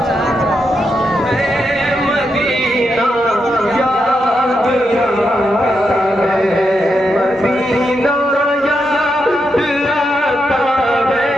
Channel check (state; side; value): normal; both; correlation 0.83